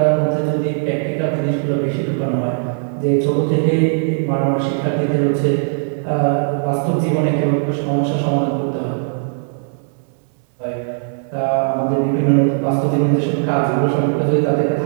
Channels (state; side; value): silent; left; 63 dB below the other